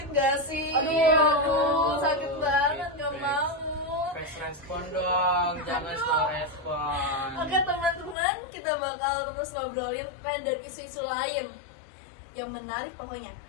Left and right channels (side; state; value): right; drops out; at 8.2 s